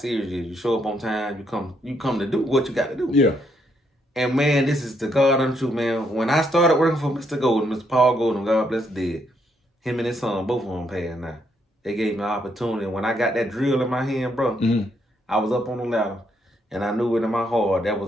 you is. You show up on time, you come to do what you got to do. Yeah. And man, this is the God untrue, man. When I started working for Mr. Golden, Mr. Paul Golden, God bless the dead, him and his son, both of them passed now. They gave me an opportunity. When I got that drill in my hand, bro, I was up on the ladder, and I knew it in my heart that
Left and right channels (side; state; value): both; normal; correlation 0.75